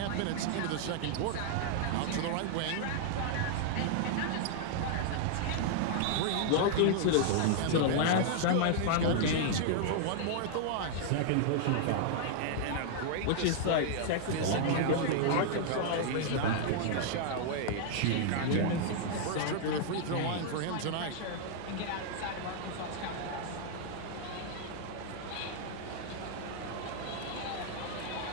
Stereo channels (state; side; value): different; both; correlation -0.01